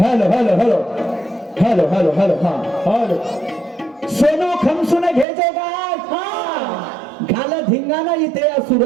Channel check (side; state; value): left; drops out; at 5.2 s